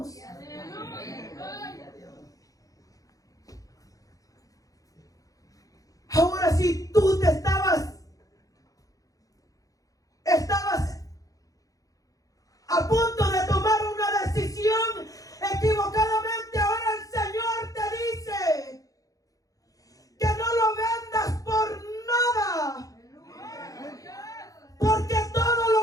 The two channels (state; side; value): late; right; 0.17 ms